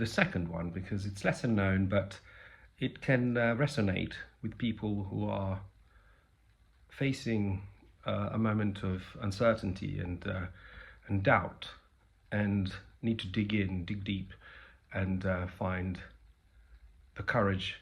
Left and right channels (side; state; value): both; identical; correlation 1.00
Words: second one because it's lesser known, but it can resonate with people who are facing a moment of uncertainty and doubt, and need to dig deep, and find the courage